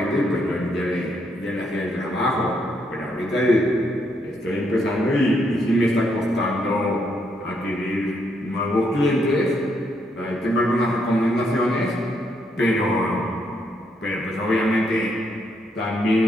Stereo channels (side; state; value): both; normal; correlation 0.76